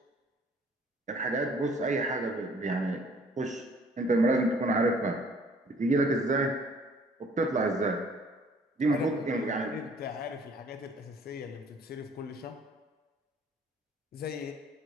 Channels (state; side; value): normal; both; correlation 0.57